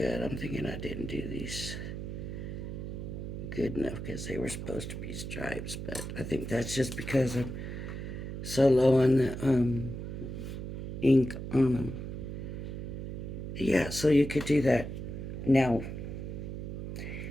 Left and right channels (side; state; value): right; noise; hum, 6 dB below the sound